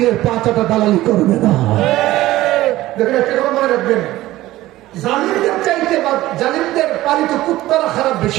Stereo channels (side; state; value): left; quieter; 16.3 dB